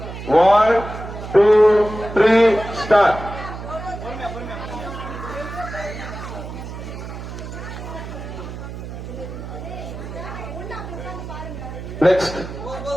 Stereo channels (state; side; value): noise; right; hum, 9 dB below the sound